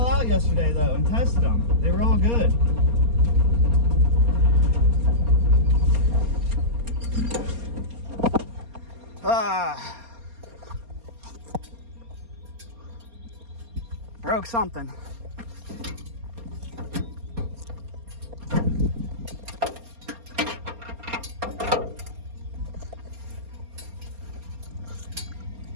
out yesterday though and tested them. They were all good. Broke something.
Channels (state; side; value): late; left; 4.3 ms